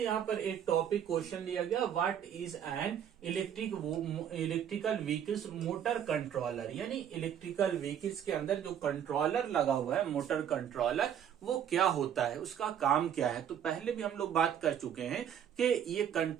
यहाँ पर एक टॉपिक क्वेश्चन लिया गया, what is an electrical vehicles motor controller, यानी इलेक्ट्रिकल व्हीकल्स के अंदर जो कंट्रोलर लगा हुआ है मोटर कंट्रोलर वो क्या होता है, उसका काम क्या है। तो पहले भी हम लोग बात कर चुके हैं कि ये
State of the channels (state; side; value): quieter; left; 9.2 dB